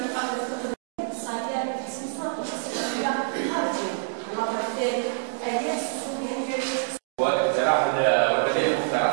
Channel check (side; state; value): left; silent; digital silence